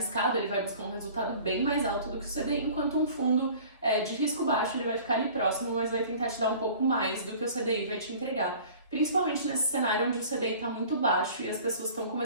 ele vai buscar um resultado bem mais alto do que o CDI, enquanto um fundo de risco baixo, ele vai ficar ali próximo, mas vai tentar te dar um pouco mais do que o CDI vai te entregar. Principalmente nesse cenário onde o CDI está muito baixo e as pessoas estão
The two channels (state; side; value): inverted; both; correlation -0.46